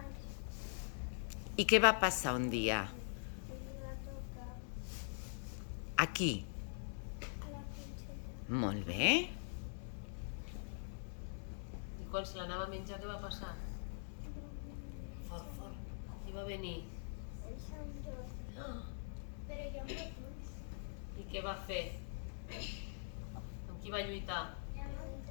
I què va passar un dia? Els va tocar Aquí. a la princesa. Molt bé. I quan se l'anava a menjar, què va passar? Fort, fort. I va venir. El Sant Jordi. Ah, Però jo no puc. I què va fer? Amb qui va lluitar? Ja no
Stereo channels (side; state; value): right; silent; digital silence